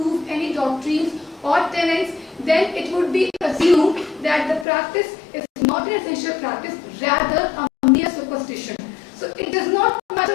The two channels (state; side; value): drops out; right; at 4.7 s